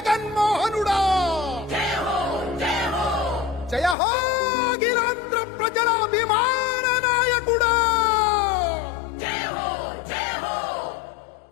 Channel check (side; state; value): right; drops out; at 4.0 s